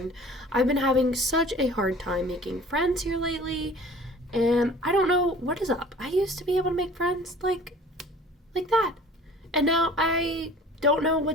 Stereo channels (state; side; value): normal; both; correlation 0.47